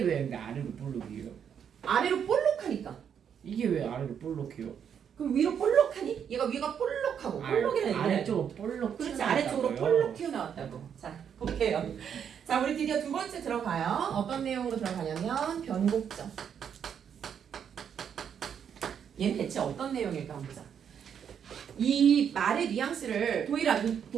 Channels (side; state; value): left; quieter; 8.1 dB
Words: 아래로 볼록이에요? 아래로 볼록하니까. 이게 왜 아래로 볼록해요? 그럼 위로 볼록하니? 얘가 위가 볼록하고 볼록이라는 얘기는 아래쪽으로 볼록 그렇지, 튀어나왔다고요? 아래쪽으로 볼록 튀어나왔다고. 자, 볼게요. 자, 우리 드디어 두 번째 들어가요. 어떤 내용으로 들어가냐면 변곡점. 얘는 대체 어떤 내용일까 한번 보자. 이 말의 뉘앙스를 도일아